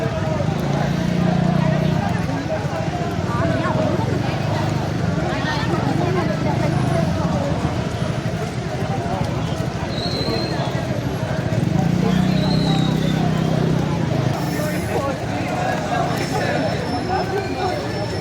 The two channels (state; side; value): identical; both; correlation 1.00